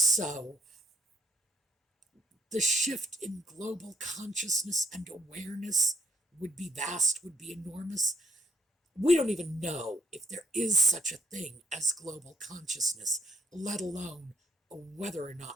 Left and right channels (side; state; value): both; normal; correlation 0.69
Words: the shift in global consciousness and awareness would be vast, would be enormous. We don't even know if there is such a thing as global consciousness, let alone whether or